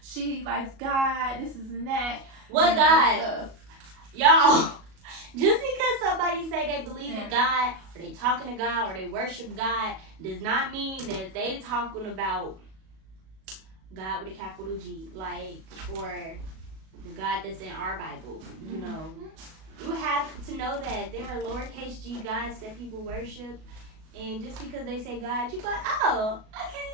She likes God, this is and that. What God? Y'all, just because somebody say they believe in God, or they talking to God, or they worship God, does not mean that they talking about God with a capital G, like, or the God that's in our Bible, you know. You have to know that there are lowercase g gods that people worship, and just because they say God, you go, oh,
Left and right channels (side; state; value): left; late; 37 ms